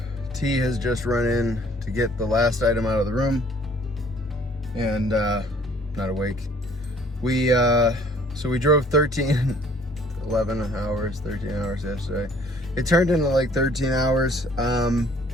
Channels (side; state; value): both; normal; correlation 0.57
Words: T has just run in to get the last item out of the room, and not awake. So we drove 13 hours yesterday. It turned into like 13 hours.